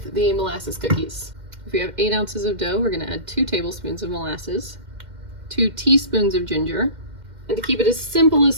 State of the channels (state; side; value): late; left; 2.1 ms